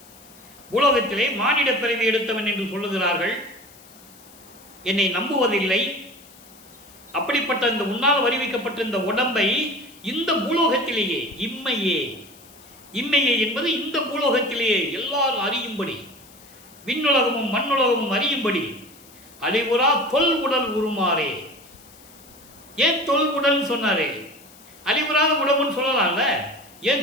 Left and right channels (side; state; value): left; noise; hiss, 23 dB below the sound